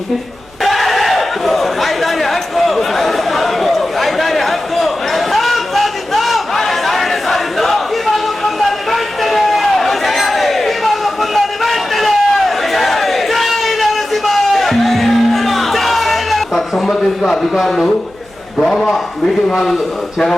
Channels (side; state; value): right; noise; hum, 28 dB below the sound